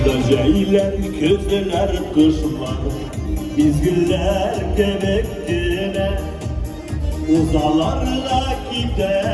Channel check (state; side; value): identical; both; correlation 1.00